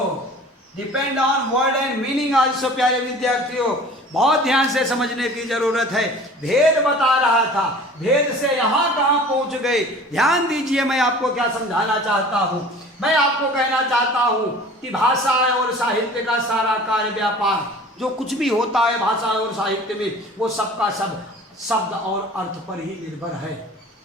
Depend on word and meaning also. प्यारे विद्यार्थियों, बहुत ध्यान से समझने की जरूरत है। भेद बता रहा था, भेद से यहाँ कहाँ पहुँच गए। ध्यान दीजिए, मैं आपको क्या समझाना चाहता हूँ। मैं आपको कहना चाहता हूँ कि भाषा और साहित्य का सारा कार्य व्यापार, जो कुछ भी होता है भाषा और साहित्य में, वो सबका सब शब्द और अर्थ पर ही निर्भर है।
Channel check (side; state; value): both; normal; correlation 0.44